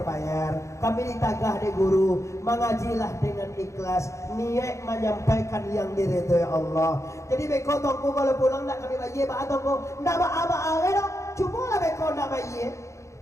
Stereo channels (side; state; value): right; late; 0.14 ms